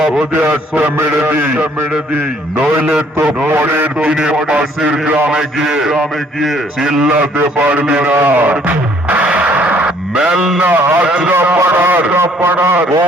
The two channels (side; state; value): both; normal; correlation 0.61